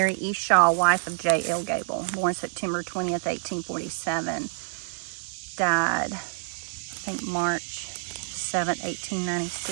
E. Shaw, wife of J.L. Gable, born September 20th, 1847. Died, I think, March 7th,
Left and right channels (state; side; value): silent; left; digital silence